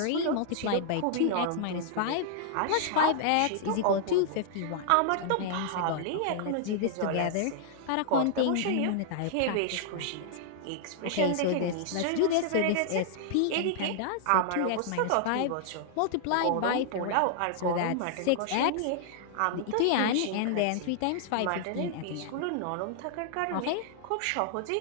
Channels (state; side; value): different; both; correlation -0.01